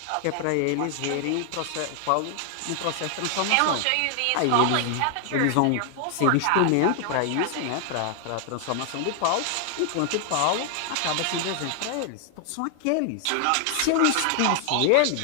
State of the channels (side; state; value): both; different; correlation 0.00